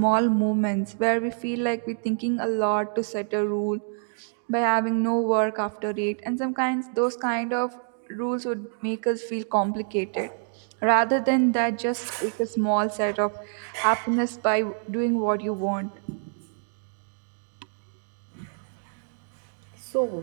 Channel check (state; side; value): silent; left; 60 dB below the other